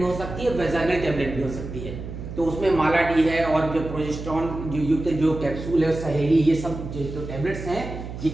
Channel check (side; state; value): right; noise; hum, 9 dB below the sound